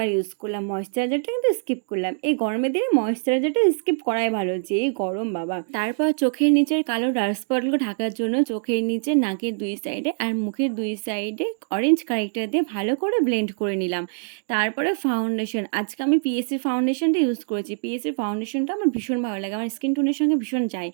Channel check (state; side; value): silent; left; digital silence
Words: ইউজ করলাম, ময়েশ্চারাইজারটা কিন্তু স্কিপ করলাম। এই গরমের দিনে ময়েশ্চারাইজারটা স্কিপ করাই ভালো, যে গরম বাবা। তারপর চোখের নিচের কালো ডার্ক স্পটগুলো ঢাকার জন্য চোখের নিচে, নাকের দুই সাইডে আর মুখের দুই সাইডে অরেঞ্জ কারেক্টার দিয়ে ভালো করে ব্লেন্ড করে নিলাম। তারপরে ফাউন্ডেশন, আজকে আমি পিএসসির ফাউন্ডেশনটা ইউজ করেছি। পিএসসির ফাউন্ডেশনটা আমার ভীষণ ভালো লাগে, আমার স্কিন টোনের সঙ্গে ভীষণ যায়।